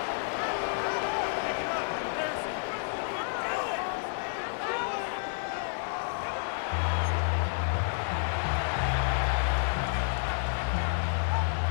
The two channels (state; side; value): silent; right; 58 dB below the other